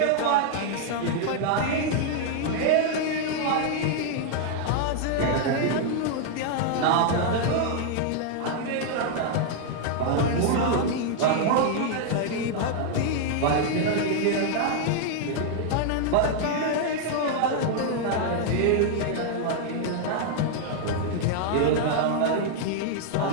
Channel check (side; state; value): both; different; correlation 0.00